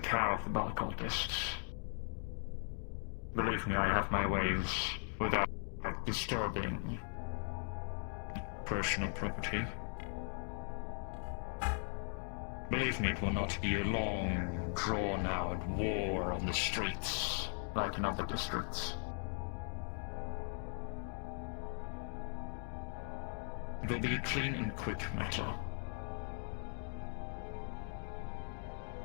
care of the Ball cultists. Believe me, I have my ways without disturbing personal property. Believe me, it will not be a long, drawn-out war on the streets like in other districts. It will be a clean and quick matter.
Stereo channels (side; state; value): right; silent; 52 dB below the other